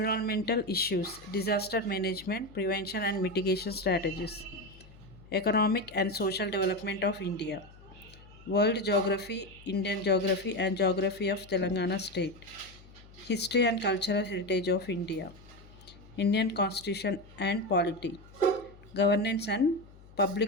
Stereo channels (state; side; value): noise; left; hum, 22 dB below the sound